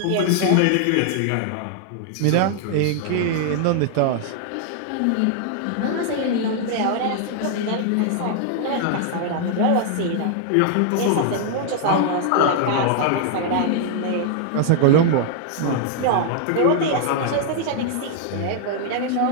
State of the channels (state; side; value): different; both; correlation 0.00